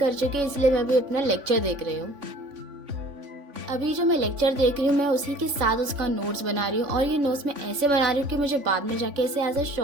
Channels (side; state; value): left; late; 3.5 ms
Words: चुकी है, इसलिए मैं अभी अपना लेक्चर देख रही हूँ। अभी जो मैं लेक्चर देख रही हूँ मैं उसी के साथ उसका नोट्स बना रही हूँ और ये नोट्स मैं ऐसे बना रही हूँ कि मुझे बाद में जाके इसे as a